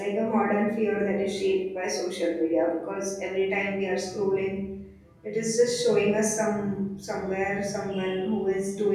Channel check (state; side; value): identical; both; correlation 1.00